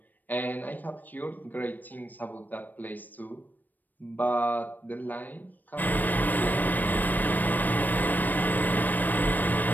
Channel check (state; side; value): late; right; 0.088 ms